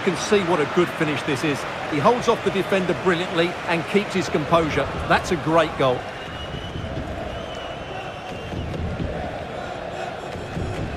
can see what a good finish this is. He holds off the defender brilliantly and keeps his composure. That's a great goal.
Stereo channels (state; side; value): identical; both; correlation 1.00